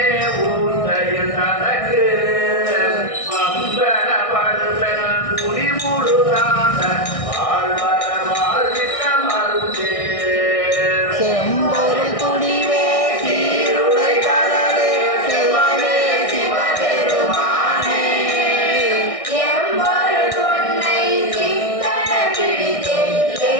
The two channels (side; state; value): right; late; 1.6 ms